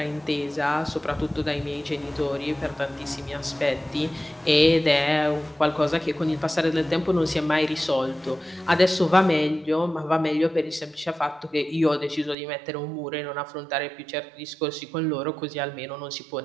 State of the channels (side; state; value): left; drops out; at 12.4 s